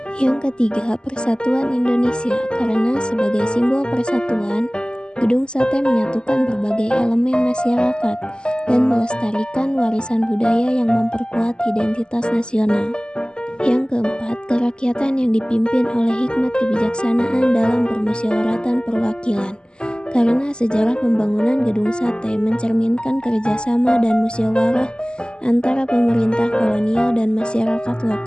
Yang ketiga, persatuan Indonesia, karena sebagai simbol persatuan, Gedung Sate menyatukan berbagai elemen masyarakat dan melestarikan warisan budaya yang memperkuat identitas nasional. Yang keempat, kerakyatan yang dipimpin oleh hikmat kebijaksanaan dalam permusyawaratan perwakilan, karena sejarah pembangunan Gedung Sate mencerminkan kerjasama dan musyawarah antara pemerintah kolonial dan masyarakat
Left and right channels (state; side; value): late; right; 0.047 ms